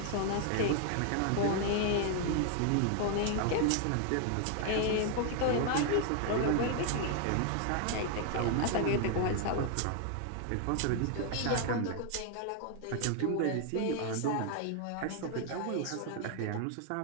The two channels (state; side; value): different; both; correlation 0.00